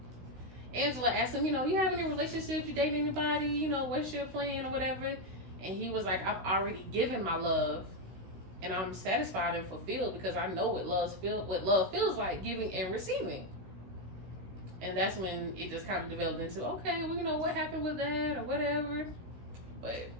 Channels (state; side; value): late; left; 16 ms